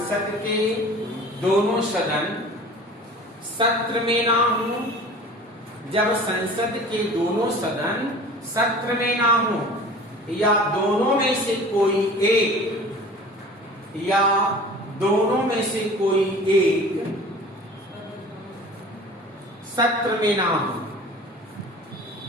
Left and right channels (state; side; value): normal; both; correlation 0.42